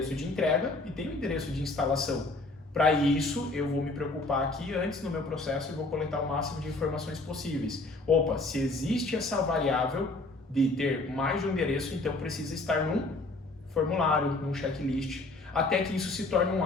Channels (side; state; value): right; quieter; 3.0 dB